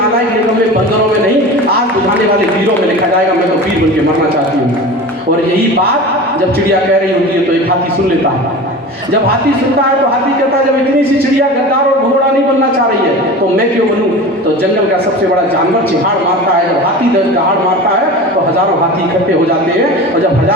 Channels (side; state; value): both; normal; correlation 0.33